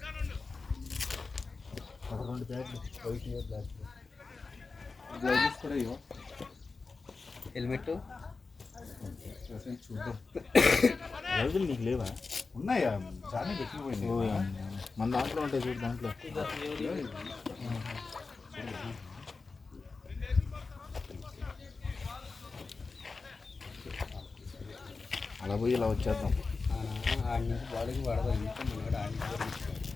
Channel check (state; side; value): quieter; right; 4.2 dB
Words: 2 బ్యాట్లు గ్లౌజెస్ కూడా ఇవ్వ హెల్మెట్ చూద్దాం. రోజులు నీకు లేవా? ఉన్నాయా చాలా పెట్టిపోయింది. మన దాంట్లో ఉంటాయి చూడు, దాంట్లో అలా పోయి ఇలా వచ్చేద్దాం. ఆడి నుంచి బాలింగ్ పడదాం. ఇంకా మనవాడు